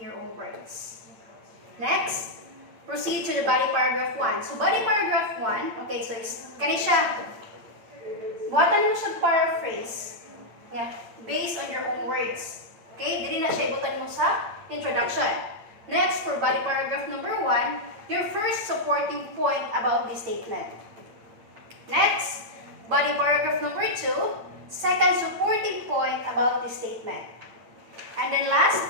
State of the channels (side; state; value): left; late; 8.8 ms